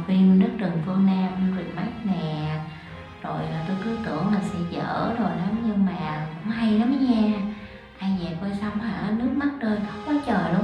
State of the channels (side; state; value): both; identical; correlation 1.00